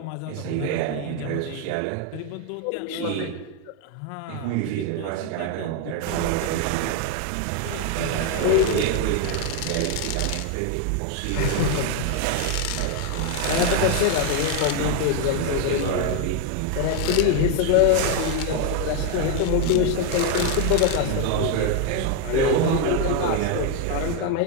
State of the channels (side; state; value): both; different; correlation 0.01